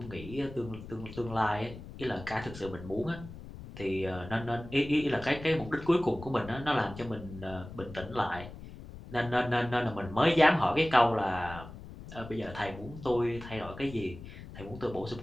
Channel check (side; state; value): left; noise; rumble, 14 dB below the sound